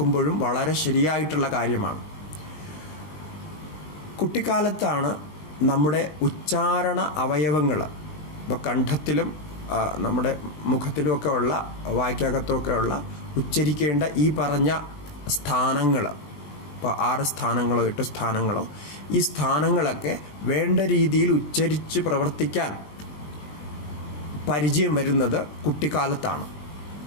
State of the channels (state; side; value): late; right; 20 ms